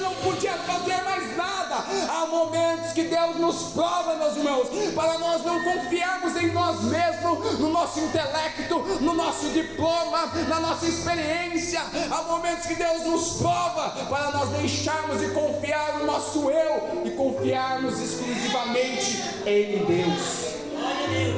podia fazer mais nada. Há momentos que Deus nos prova, meus irmãos, para nós não confiarmos em nós mesmos, no nosso intelecto, no nosso diploma, na nossa experiência. Há momentos que Deus nos prova para nós deixarmos de confiar no nosso eu e confiarmos exclusivamente em Deus. Glória a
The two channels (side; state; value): both; identical; correlation 1.00